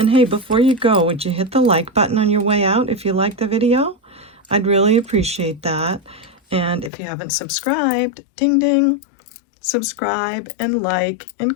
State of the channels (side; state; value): right; drops out; at 6.9 s